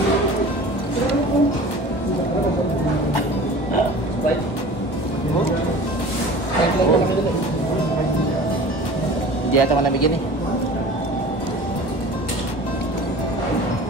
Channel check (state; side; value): late; right; 1.2 ms